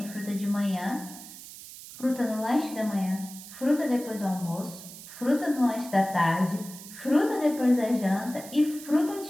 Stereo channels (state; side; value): noise; right; hiss, 15 dB below the sound